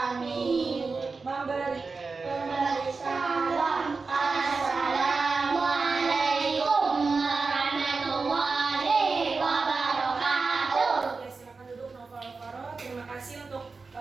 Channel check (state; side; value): quieter; left; 4.3 dB